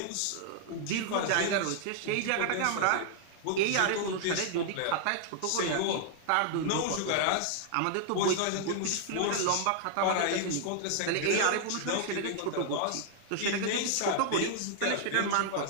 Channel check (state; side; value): different; both; correlation -0.01